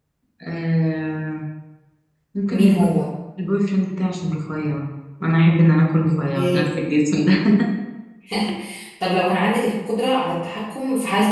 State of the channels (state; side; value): identical; both; correlation 1.00